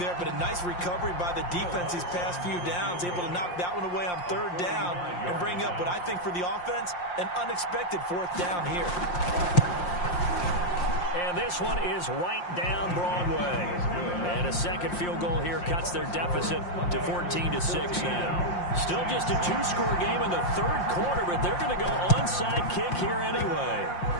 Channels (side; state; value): right; late; 5.7 ms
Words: but a nice recovery by the defense these past few downs, able to knock that one away on third down and bring up what I think for the offense, an unexpected fourth down here. And this one is right down Broadway. And a second field goal here cuts their deficit to 14-6 now. Still just a 2-score game in the third quarter, but they're going to go onside kick here anyway.